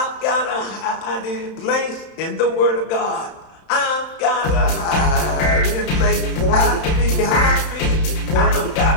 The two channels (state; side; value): late; right; 31 ms